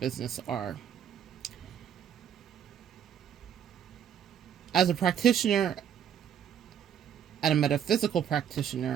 are. As a practitioner and a metaphysical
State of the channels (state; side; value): quieter; left; 9.0 dB